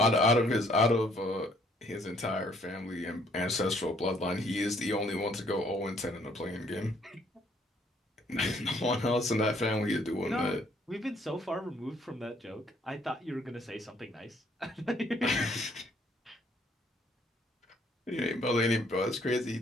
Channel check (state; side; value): normal; both; correlation 0.64